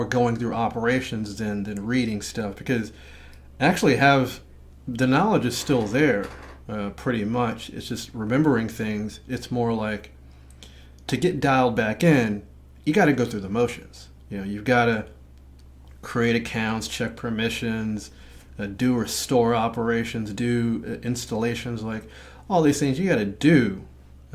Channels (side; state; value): both; identical; correlation 1.00